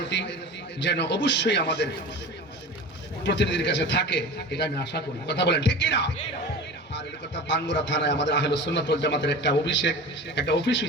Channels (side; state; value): both; normal; correlation 0.34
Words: যেন অবশ্যই আমাদের প্রতিনিধির কাছে থাকে, এটা আমি আশা করি। কথা বলেন ঠিক কিনা? আর এই কথা বাঙ্গুরা থানায় আমাদের আহলে সুন্নাত ওয়াল জামাতের একটা অফিস